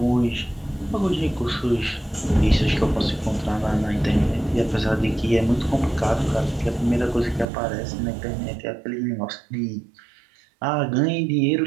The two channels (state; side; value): drops out; left; at 7.5 s